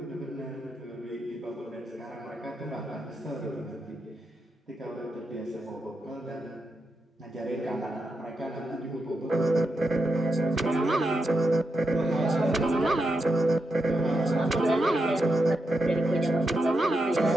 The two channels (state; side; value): normal; both; correlation 0.85